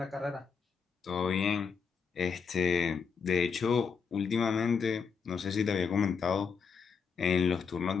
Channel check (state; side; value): quieter; right; 5.8 dB